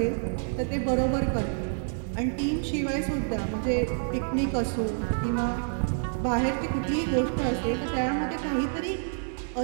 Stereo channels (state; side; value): silent; left; digital silence